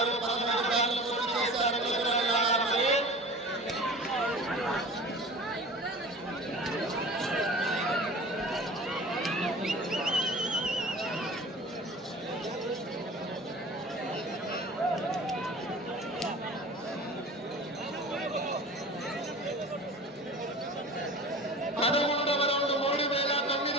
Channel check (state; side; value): normal; both; correlation 0.39